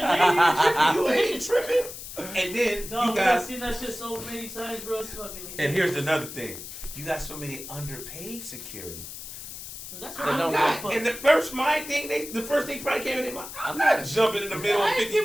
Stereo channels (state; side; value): noise; left; hiss, 11 dB below the sound